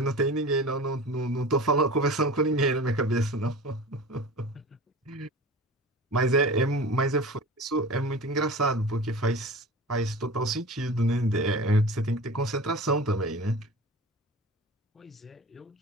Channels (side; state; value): both; normal; correlation 0.35